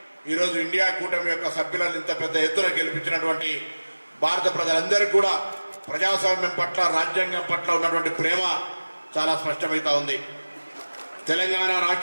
ఈరోజు ఇండియా కూటమి యొక్క సభ్యులను ఇంత పెద్ద ఎత్తున గెలిపించినటువంటి భారత ప్రజలందరికీ కూడా ప్రజాస్వామ్యం పట్ల, రాజ్యాంగం పట్ల ఉన్నటువంటి ప్రేమ చాలా స్పష్టమవుతా ఉంది. తెలంగాణ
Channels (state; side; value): inverted; both; correlation -1.00